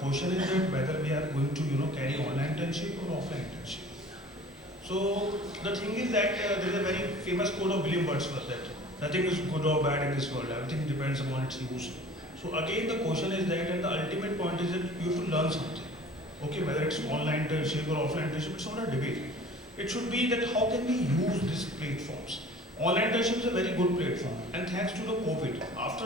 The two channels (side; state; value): both; normal; correlation 0.46